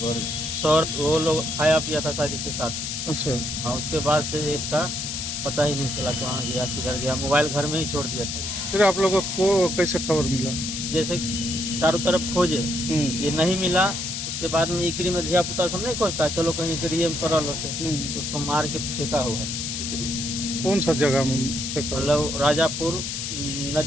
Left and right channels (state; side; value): noise; left; hiss, 4 dB below the sound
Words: और सौर वो लोग खाया पिया था शायद इसके साथ। अच्छा। हाँ, उसके बाद से इसका पता ही नहीं चला कहाँ गया किधर गया। मोबाइल घर में ही छोड़ दिया था। फिर आप लोगों को कैसे खबर मिला? जैसे चारों तरफ खोजे, ये नहीं मिला। उसके बाद में इकरी में धिया पुता सब नहीं खोजता, चलो कहीं इकरी में पड़ल होते, तो उसको मार के फेंका हुआ है। कौन सा जगह में? मतलब राजापुर